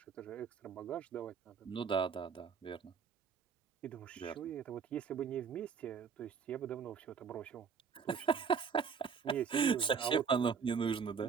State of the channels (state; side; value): quieter; left; 6.3 dB